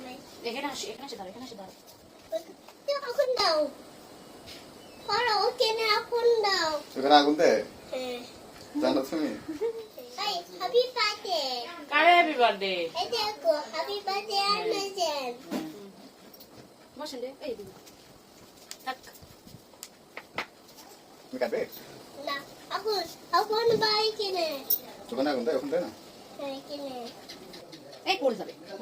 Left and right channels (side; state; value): both; identical; correlation 1.00